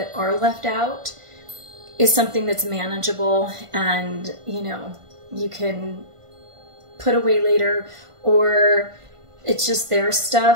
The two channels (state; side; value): late; left; 1.5 ms